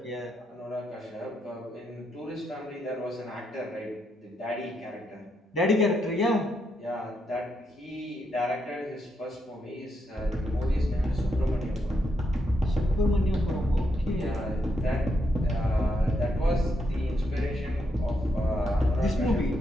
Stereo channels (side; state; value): both; normal; correlation 0.80